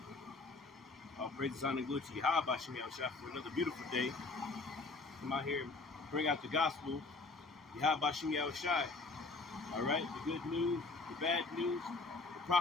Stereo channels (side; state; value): right; quieter; 3.8 dB